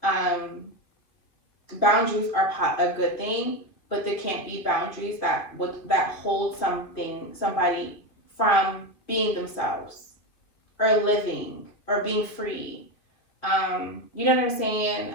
Boundaries are a good thing, but there can't be boundaries that hold somebody from being themselves or living or being free. You know what I'm saying?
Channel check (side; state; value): right; late; 2.9 ms